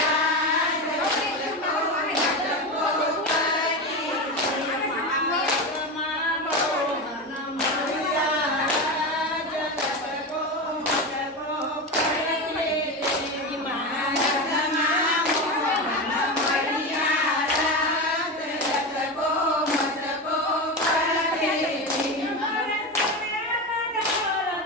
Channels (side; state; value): both; normal; correlation 0.20